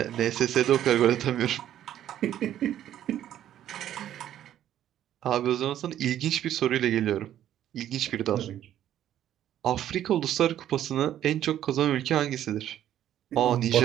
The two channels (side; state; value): left; quieter; 11.5 dB